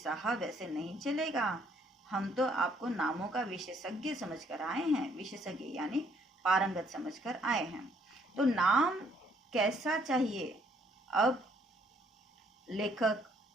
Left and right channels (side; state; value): both; normal; correlation 0.66